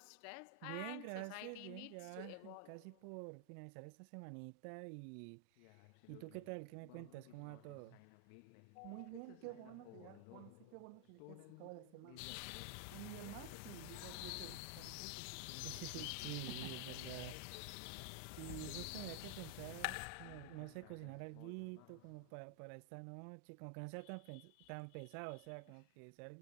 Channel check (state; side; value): different; both; correlation 0.00